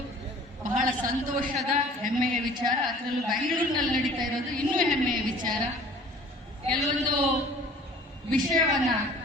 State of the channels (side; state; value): both; normal; correlation 0.49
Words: ಬಹಳ ಸಂತೋಷದ ಹೆಮ್ಮೆಯ ವಿಚಾರ. ಅದರಲ್ಲೂ ಬೆಂಗಳೂರಿನಲ್ಲಿ ನಡೀತಾ ಇರೋದು ಇನ್ನೂ ಹೆಮ್ಮೆಯ ವಿಚಾರ. ಕೆಲವೊಂದು ವಿಷಯವನ್ನ